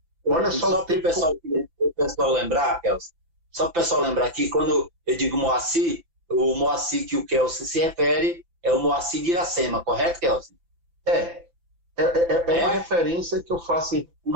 o tempo... O pessoal lembrar, Kelson, só para o pessoal lembrar aqui, quando eu digo Moacir, o Moacir que o Kelson se refere é o Moacir de Iracema, correto, Kelson? É uma referência que eu faço...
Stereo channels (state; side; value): late; left; 5.9 ms